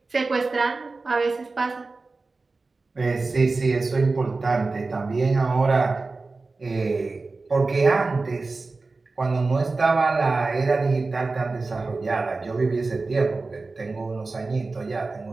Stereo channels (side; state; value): left; quieter; 3.7 dB